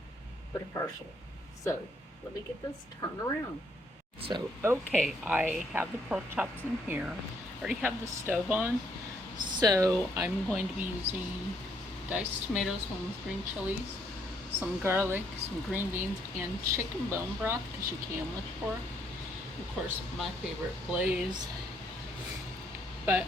but a partial. So let me get this turned around. So okay, I have the pork chops in here. I already have the stove on. So I'm going to be using diced tomatoes, one with green chilies, some garlic, some green beans, and chicken bone broth because you can with pork. Of course, my favorite glaze. But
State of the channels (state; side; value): normal; both; correlation 0.70